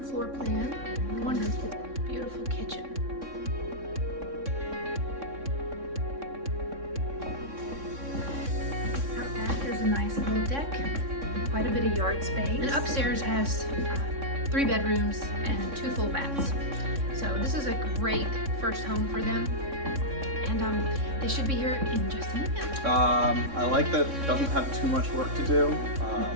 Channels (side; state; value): left; late; 3.6 ms